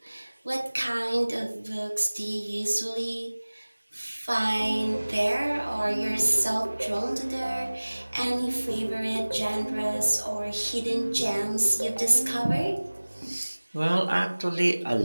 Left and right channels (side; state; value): both; inverted; correlation -1.00